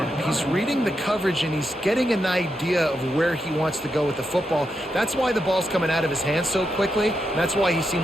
He's reading the coverage, and he's getting an idea of where he wants to go with the football. That's why the ball's coming out of his hands so quickly, and that's why he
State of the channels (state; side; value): normal; both; correlation 0.84